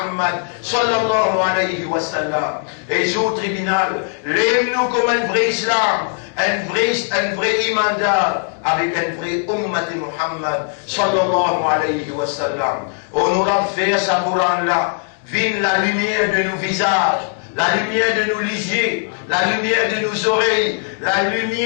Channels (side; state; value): right; silent; 57 dB below the other